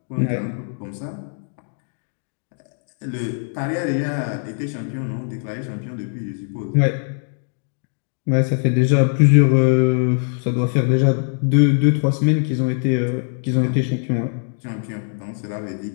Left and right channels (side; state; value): right; silent; 65 dB below the other